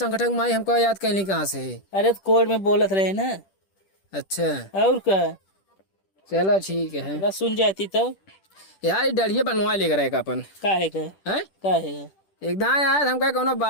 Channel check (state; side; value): late; right; 10 ms